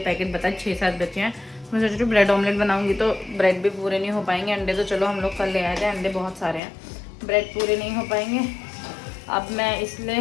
बता, 6-7 बचे हैं। मैं सोच रही हूँ ब्रेड ऑमलेट बनाऊंगी तो ब्रेड भी पूरे नहीं हो पाएंगे। अंडे तो चलो हम लोग कल ले आए थे, अंडे बहुत सारे हैं, ब्रेड पूरे नहीं हो पाएंगे। अब मैं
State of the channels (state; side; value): drops out; right; at 6.6 s